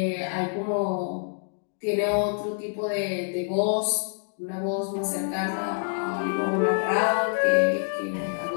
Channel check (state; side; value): silent; right; digital silence